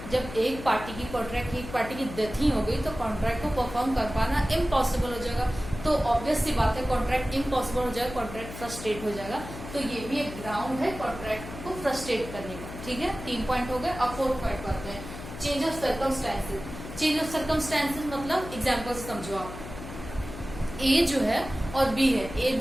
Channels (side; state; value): left; noise; hum, 11 dB below the sound